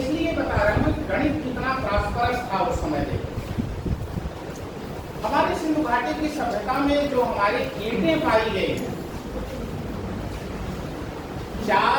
बता रहा हूं कि गणित कितना प्रॉस्परस था उस समय देखो। हमारी सिंधु घाटी की सभ्यता में जो हमारी ईंटें पाई गई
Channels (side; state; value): both; identical; correlation 1.00